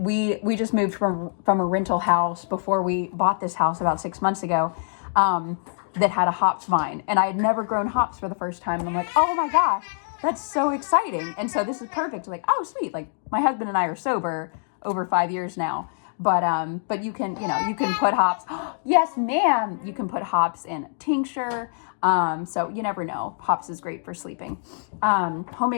we just moved from a rental house before we bought this house about 6 months ago, that had a hops vine, and I had never grown hops for the first time, and I'm like, oh my gosh, that's so exciting. And so this is perfect. Like, oh sweet, like my husband and I are sober over 5 years now, but you can put hops. Yes, ma'am. You can put hops in tincture. So you never know. Hops is great for sleeping.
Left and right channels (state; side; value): silent; right; digital silence